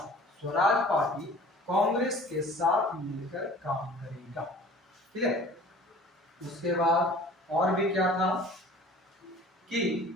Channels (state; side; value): normal; both; correlation 0.47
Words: स्वराज पार्टी कांग्रेस के साथ मिलकर काम करेगा, ठीक है। उसके बाद और भी क्या था कि